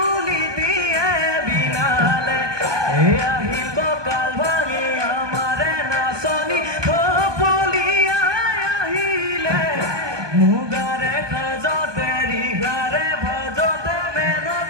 দিয়ে বিনালে আহিব কাল ভাঙি আমাৰে নাচনি থপলিয়াই আহিলে মুগাৰে সাজতে ৰিহাৰে ভাজতে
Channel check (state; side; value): late; left; 1.2 ms